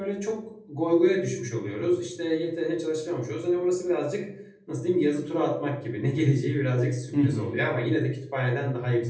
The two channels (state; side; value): identical; both; correlation 1.00